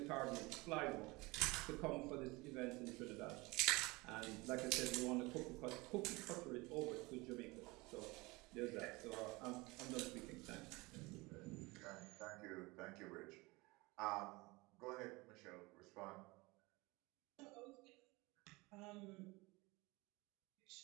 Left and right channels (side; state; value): left; quieter; 23.6 dB